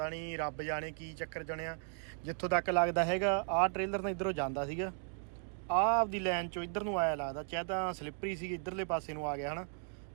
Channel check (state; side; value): silent; left; 54 dB below the other